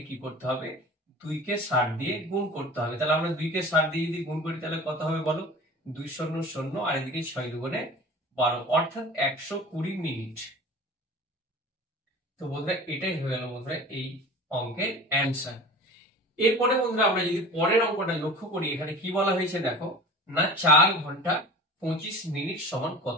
কি করতে হবে? 2 কে 60 দিয়ে গুণ করতে হবে। তাহলে আমরা 2 কে 60 দিয়ে যদি গুণ করি, তাহলে কত হবে বলো? 2 শূন্য শূন্য, আর এদিকে 6 দুগুণে 12, অর্থাৎ 120 মিনিট। তো বন্ধুরা এটাই হয়ে গেল বন্ধুরা এই অঙ্কের অ্যান্সার। এরপরে বন্ধুরা আমরা যদি পরের অঙ্কটা লক্ষ্য করি, এখানে কি বলা হয়েছে দেখো না 4 ঘন্টা 25 মিনিট সমান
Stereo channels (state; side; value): normal; both; correlation 0.38